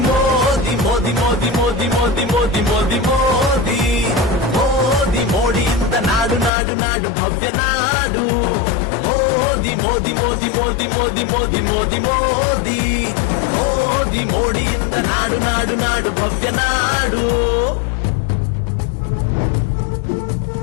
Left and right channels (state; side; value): drops out; right; at 6.5 s